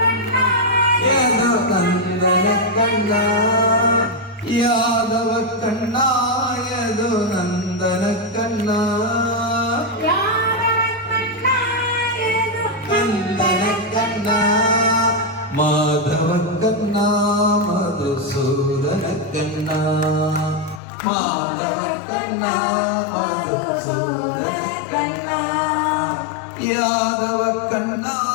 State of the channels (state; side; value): drops out; right; at 20.8 s